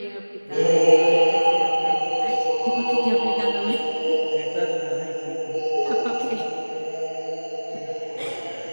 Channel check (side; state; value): both; inverted; correlation -1.00